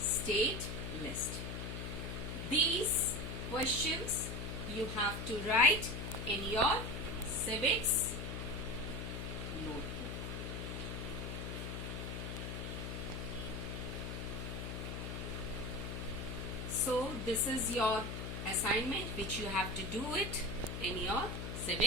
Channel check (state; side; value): noise; left; hum, 5 dB below the sound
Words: list. These questions you have to write in your civics notebook. So this is your assignment which you have to do it in your